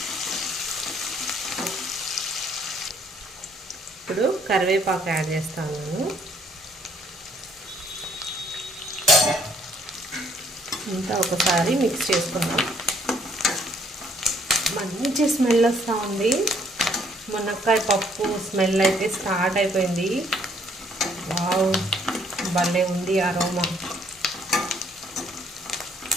ఇప్పుడు కరివేపాకు యాడ్ చేస్తాను. ఇంకా ఒకసారి మిక్స్ చేసుకుందాం. మంచి స్మెల్ వస్తూ ఉంది. మునక్కాయ పప్పు స్మెల్ అయితే స్టార్ట్ అయిపోయింది. వావ్, భలే ఉంది అరోమా.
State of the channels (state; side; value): normal; both; correlation 0.65